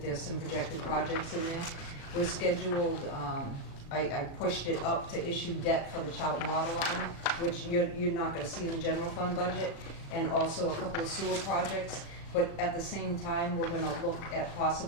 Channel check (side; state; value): right; late; 36 ms